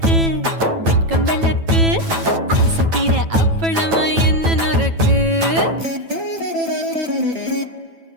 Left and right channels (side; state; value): left; late; 9.1 ms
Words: வெட்கம் விளக்கு ஆசை தீர அப்பளமா என்ன நொறக்கு